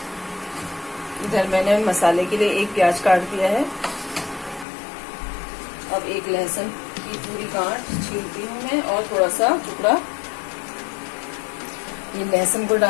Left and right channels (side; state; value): right; drops out; at 4.7 s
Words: इधर मैंने मसाले के लिए एक प्याज काट दिया है। अब एक लहसुन की पूरी गांठ छीलती हूँ मैं और थोड़ा सा टुकड़ा ये लहसुन को